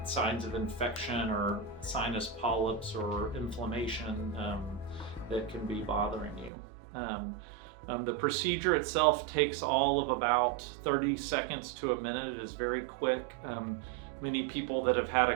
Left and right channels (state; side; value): drops out; left; at 6.5 s